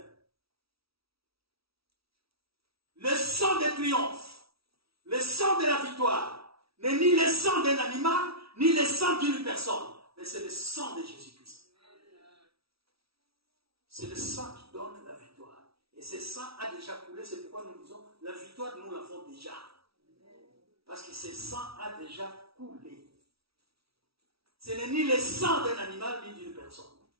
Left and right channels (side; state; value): left; late; 0.76 ms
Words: le sang de triomphe, le sang de la victoire, n'est ni le sang d'un animal, ni le sang d'une personne, mais c'est le sang de Jésus-Christ. C'est le sang qui donne la victoire. Et ce sang a déjà coulé, c'est pourquoi nous disons, la victoire, nous l'avons déjà. Parce que ce sang a déjà coulé. Ce n'est ni le sang d'un animal, ni d'une personne.